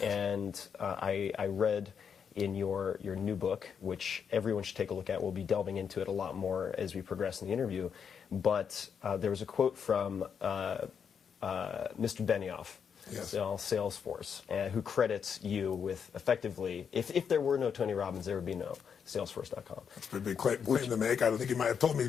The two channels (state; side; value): quieter; right; 7.0 dB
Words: And I read in your new book, which everyone should take a look at. We'll be delving into it a lot more as we progress in the interview. But there was a quote from Mr. Benioff, Salesforce, who credits you with effectively, if there were no Tony Robbins, there would be no Salesforce.com. That's a big claim to make. I don't think he might have told me